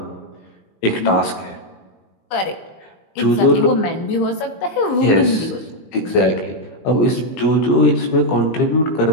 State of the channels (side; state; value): right; late; 19 ms